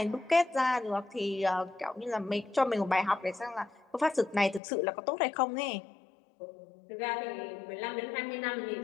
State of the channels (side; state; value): right; drops out; at 4.6 s